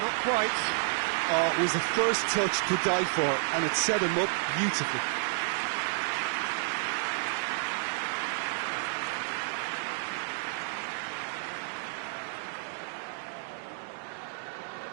quite. Oh, it was the first touch to die for, and it set him up beautifully.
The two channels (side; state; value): left; silent; digital silence